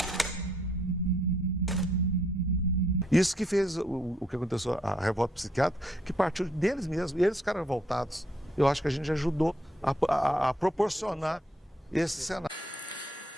Isso que fez o que aconteceu, a revolta psiquiátrica, que partiu deles mesmos, e eles ficaram revoltados. Eu acho que a gente ajudou a proporcionar esse cenário.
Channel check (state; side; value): normal; both; correlation 0.70